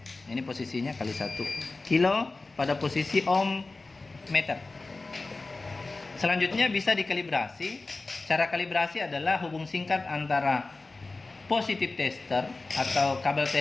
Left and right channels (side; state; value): right; quieter; 3.5 dB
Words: Ini posisinya kali 1 kilo pada posisi ohm meter. Selanjutnya bisa dikalibrasi. Cara kalibrasi adalah hubung singkat antara positif tester atau kabel